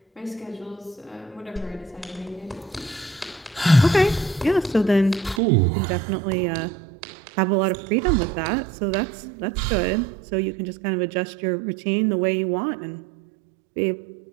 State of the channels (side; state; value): left; drops out; at 5.4 s